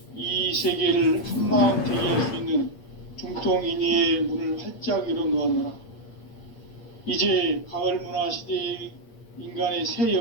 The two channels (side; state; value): right; late; 8.6 ms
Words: 이 세계를 한마음 대기할 수 있는 중통인의의 문을 활짝 열어놓았노라. 이제 가을 문화 시대의 인간의 새